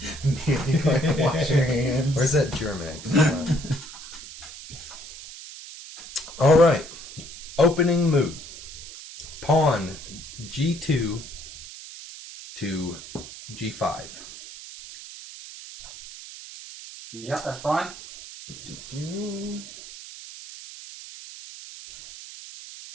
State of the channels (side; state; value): right; noise; hiss, 14 dB below the sound